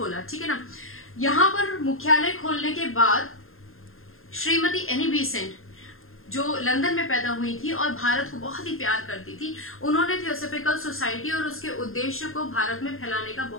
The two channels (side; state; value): right; late; 0.61 ms